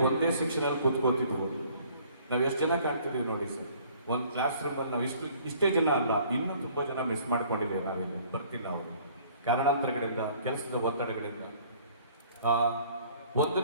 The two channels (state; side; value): inverted; both; correlation -0.56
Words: ಒಂದೇ ಸೆಕ್ಷನಲ್ಲಿ ಕೂತ್ಕೋತಿದ್ವು. ನಾವು ಎಷ್ಟು ಜನ ಕಾಣ್ತಿದ್ದೀವಿ ನೋಡಿ ಸರ್. ಒಂದು ಕ್ಲಾಸ್ ರೂಮಲ್ಲಿ ನಾವು ಇಷ್ಟೇ ಜನ ಅಲ್ಲ, ಇನ್ನೂ ತುಂಬ ಜನ ಮಿಸ್ ಮಾಡ್ಕೊಂಡಿದ್ದೇವೆ. ನಾವಿಲ್ಲಿ ಬರ್ತಿಲ್ಲ ಅವರು ಕಾರಣಾಂತರಗಳಿಂದ, ಕೆಲಸದ ಒತ್ತಡಗಳಿಂದ.